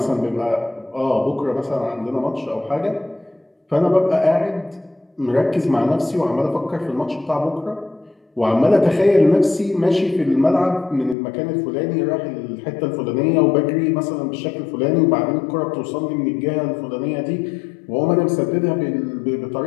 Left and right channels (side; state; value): right; drops out; at 11.2 s